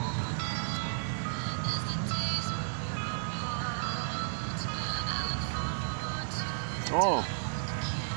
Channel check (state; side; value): silent; left; 56 dB below the other